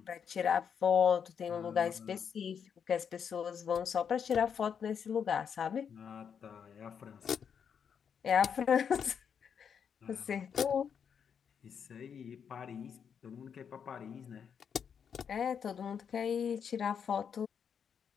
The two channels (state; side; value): quieter; right; 7.3 dB